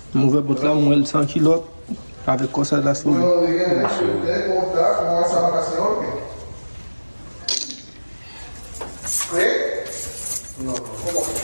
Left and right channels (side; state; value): both; inverted; correlation -1.00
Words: Mon verre là, moi, 100 kilos. Avec quoi ça de la souris.